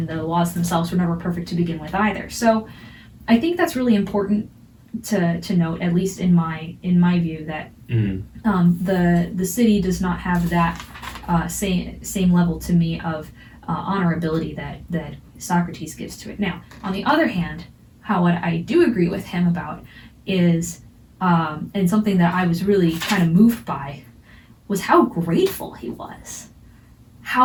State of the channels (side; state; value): both; identical; correlation 1.00